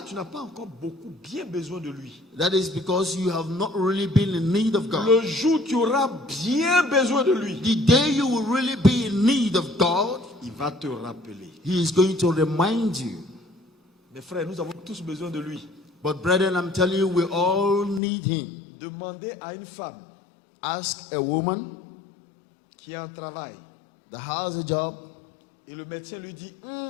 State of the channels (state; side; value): drops out; right; at 18.0 s